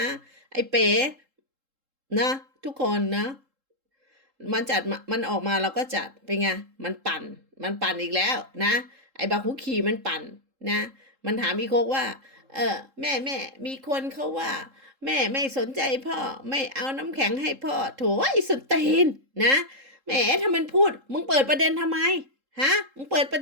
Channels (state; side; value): late; left; 3.7 ms